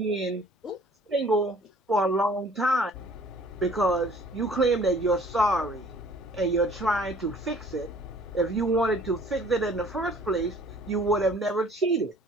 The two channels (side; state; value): both; normal; correlation 0.53